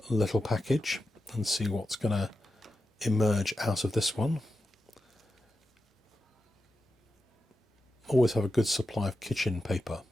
little package and see what's going to emerge out of this one. Always have a good supply of kitchen paper.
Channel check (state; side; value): normal; both; correlation 0.90